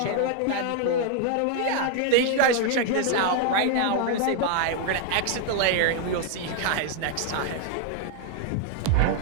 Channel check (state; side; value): different; both; correlation 0.00